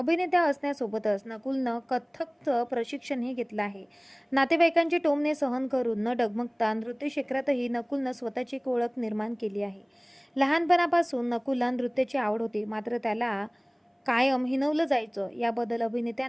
असण्यासोबतच नकुलनं कथ्थकचं प्रशिक्षणही घेतलं आहे. नातेवाईकांची टोमणे सहन करून न डगमगता नृत्य क्षेत्रातही नकुलनं स्वतःची एक ओळख निर्माण केली आहे. लहानपणापासून नकुलला नृत्याची आवड होती, मात्र त्याला कायम हिणवलं जायचं. याबद्दल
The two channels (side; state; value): both; identical; correlation 1.00